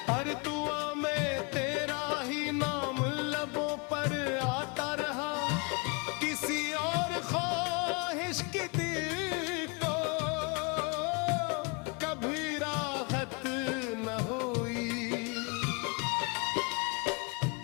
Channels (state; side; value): quieter; right; 32.1 dB